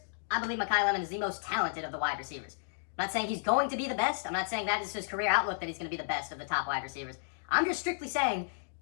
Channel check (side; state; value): right; silent; digital silence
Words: I believe Makai Lemon is the most talented of the wide receivers. I'm not saying he's going to be the best. I'm not saying that is his career outlook that he's going to be the best of the top wide receivers. I'm just strictly saying,